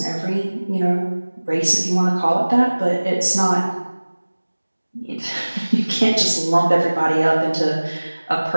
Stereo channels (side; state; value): both; inverted; correlation -1.00